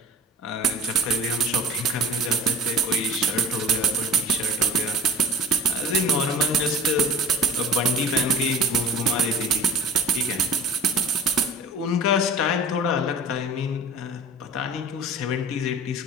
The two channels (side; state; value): both; normal; correlation 0.41